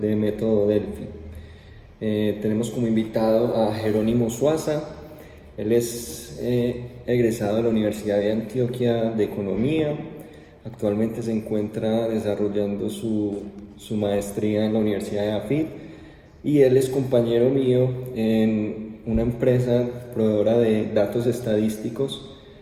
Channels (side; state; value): both; identical; correlation 1.00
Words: método Delphi. Tenemos como invitado a Jerónimo Suaza. Él es egresado de la Universidad de Antioquia de Economía. Actualmente se encuentra desarrollando su maestría en la Universidad de AFIT y él es compañero mío en una empresa proveedora de datos estadísticos